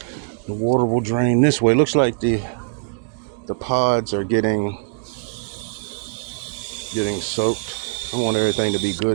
the water will drain this way. Looks like the pods are getting soaked. I want everything to be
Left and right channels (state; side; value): quieter; left; 33.0 dB